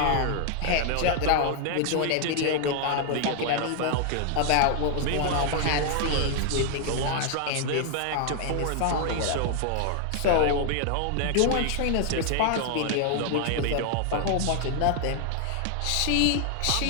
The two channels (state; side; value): different; both; correlation 0.00